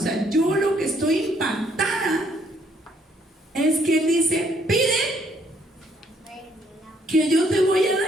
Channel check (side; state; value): both; normal; correlation 0.68